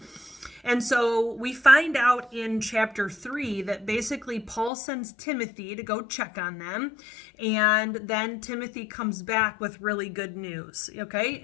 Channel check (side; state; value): right; drops out; at 4.7 s